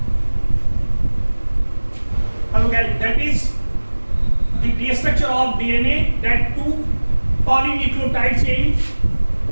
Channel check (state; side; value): inverted; both; correlation -1.00